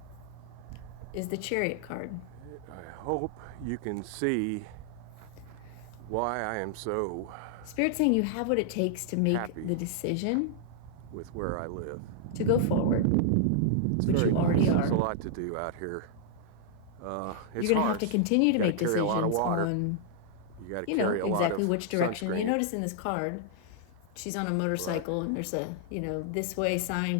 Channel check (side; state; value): both; different; correlation -0.01